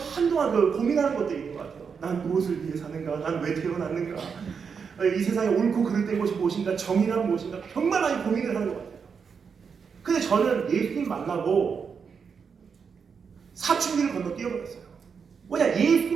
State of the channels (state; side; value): quieter; left; 6.1 dB